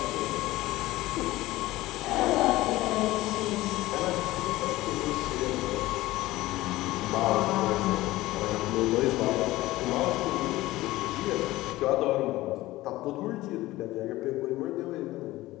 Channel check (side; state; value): right; quieter; 17.7 dB